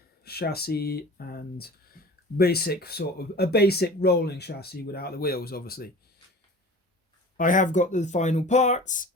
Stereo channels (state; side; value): normal; both; correlation 0.40